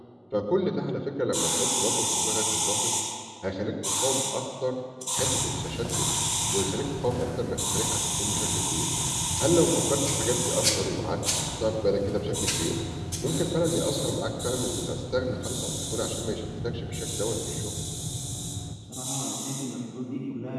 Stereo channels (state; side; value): identical; both; correlation 1.00